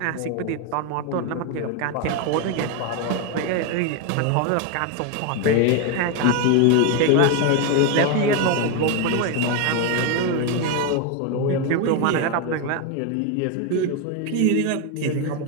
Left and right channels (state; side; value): different; both; correlation 0.01